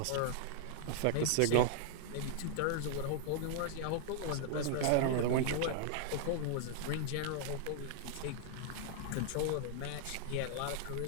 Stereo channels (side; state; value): both; different; correlation -0.01